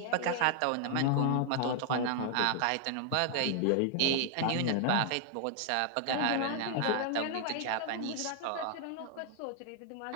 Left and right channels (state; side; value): different; both; correlation 0.00